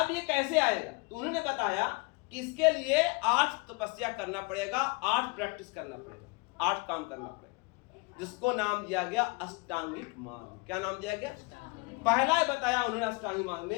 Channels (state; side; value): quieter; right; 28.0 dB